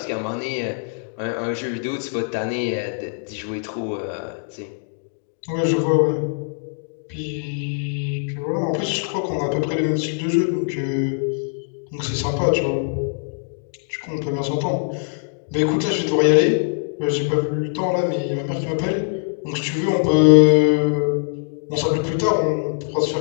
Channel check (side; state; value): right; silent; digital silence